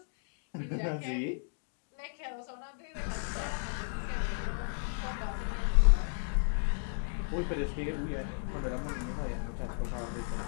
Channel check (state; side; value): silent; right; digital silence